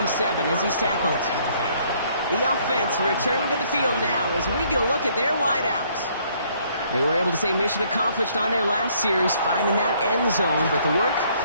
as he's tackled. The offense returning to the field now as we get a look at their wideouts. They were able to say mission accomplished on their last series, finding that end zone, but the work,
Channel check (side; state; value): both; inverted; correlation -0.65